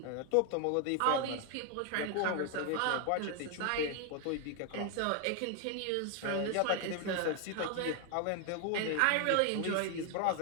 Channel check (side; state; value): both; different; correlation 0.00